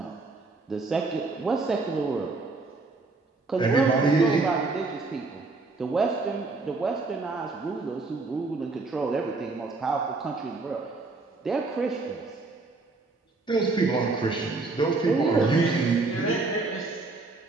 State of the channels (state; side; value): quieter; left; 3.6 dB